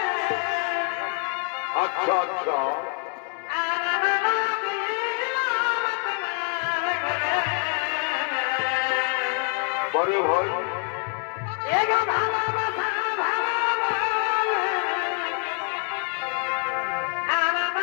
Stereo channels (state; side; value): quieter; right; 38.7 dB